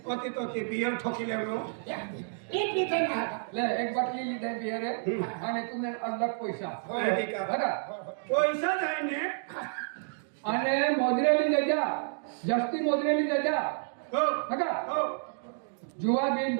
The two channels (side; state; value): left; silent; digital silence